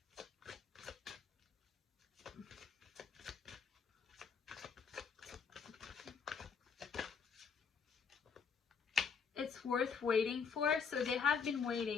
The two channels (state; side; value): quieter; right; 6.1 dB